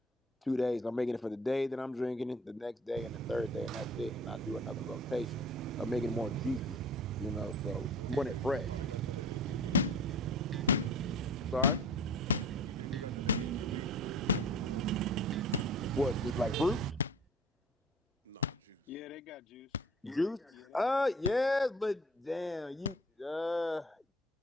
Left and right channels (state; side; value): normal; both; correlation 0.44